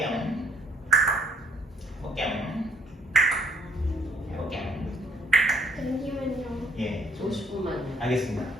잠시만요. 예, 50분만요. 알겠습니다.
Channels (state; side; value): normal; both; correlation 0.64